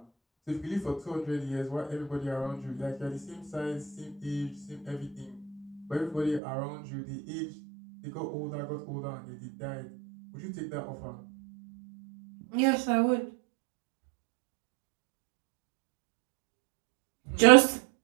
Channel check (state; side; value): drops out; left; at 6.4 s